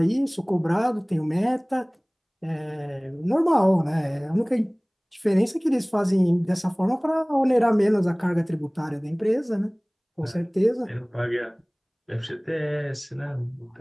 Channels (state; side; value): identical; both; correlation 1.00